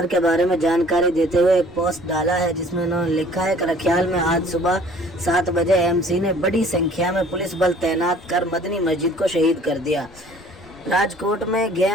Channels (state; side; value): normal; both; correlation 0.53